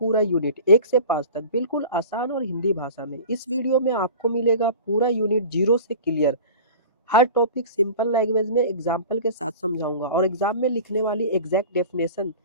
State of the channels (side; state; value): both; inverted; correlation -0.38